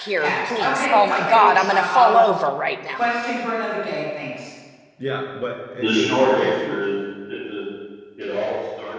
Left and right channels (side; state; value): both; identical; correlation 1.00